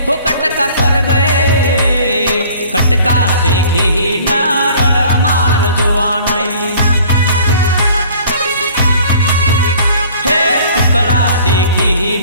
हो कटका कर गए कटका देखी न रड़ मार जुआ नहीं।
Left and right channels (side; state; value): both; inverted; correlation -0.51